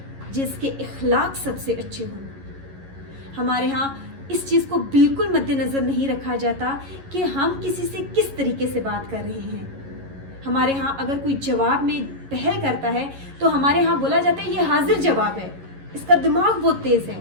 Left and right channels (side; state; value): left; late; 11 ms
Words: جس کے اخلاق سب سے اچھے ہوں. ہمارے ہاں اس چیز کو بالکل مد نظر نہیں رکھا جاتا کہ ہم کسی سے کس طریقے سے بات کر رہے ہیں. ہمارے ہاں اگر کوئی جواب میں پہل کرتا ہے تو ہمارے ہاں بولا جاتا ہے یہ حاضر جواب ہے، اس کا دماغ بہت تیز ہے.